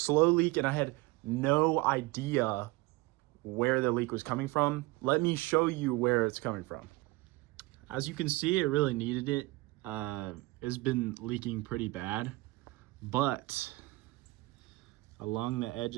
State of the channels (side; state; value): left; quieter; 21.5 dB